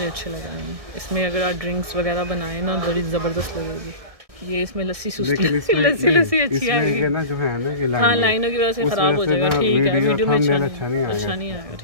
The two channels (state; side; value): late; left; 1.6 ms